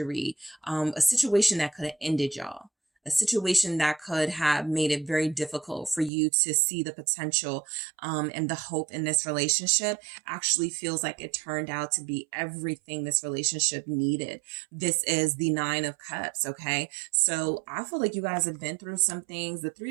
a situation that could have ended y'all. A situation that could have made it very difficult for you to see the potential and the hope in this relationship actually feels like it turned out to be everything this relationship needed. This is the Nine of Cups, okay? So I feel like you guys have been through some things. The Three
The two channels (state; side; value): drops out; left; at 6.1 s